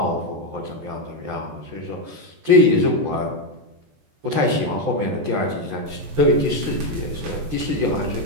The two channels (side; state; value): left; late; 14 ms